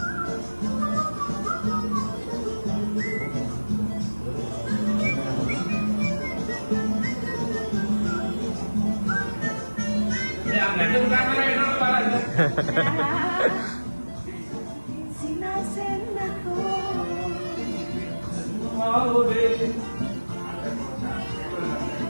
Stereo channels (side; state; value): both; inverted; correlation -1.00